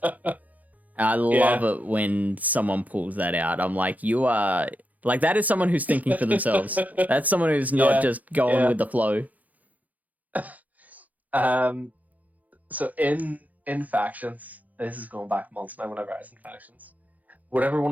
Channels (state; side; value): late; left; 0.078 ms